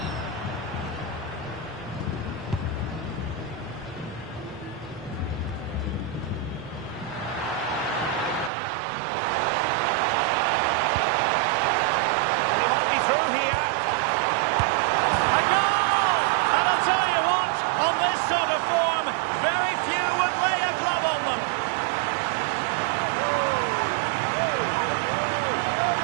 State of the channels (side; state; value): left; drops out; at 8.5 s